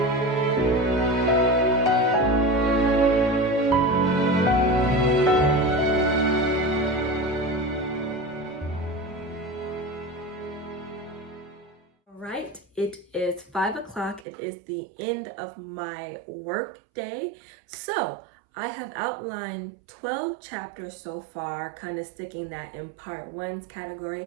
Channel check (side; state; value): left; drops out; at 14.2 s